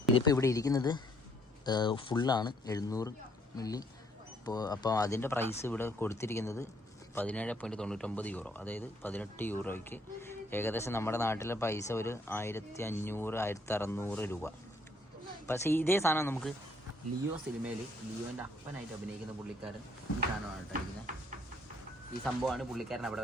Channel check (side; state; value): both; normal; correlation 0.66